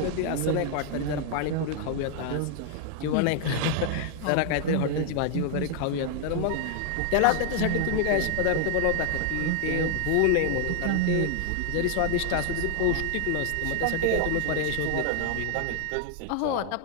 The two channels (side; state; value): both; different; correlation 0.00